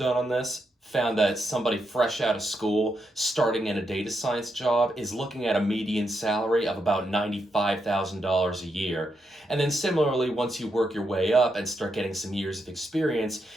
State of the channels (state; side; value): normal; both; correlation 0.82